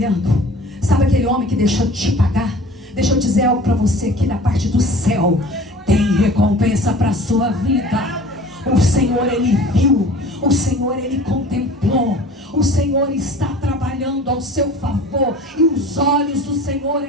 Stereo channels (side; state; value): both; normal; correlation 0.44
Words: Sabe aquele homem que deixou de te pagar? Deixa eu dizer algo para você aqui da parte do céu. Tem recompensa para a sua vida. O Senhor ele viu, o Senhor ele contemplou, o Senhor está trabalhando ao seu favor, e os olhos do Senhor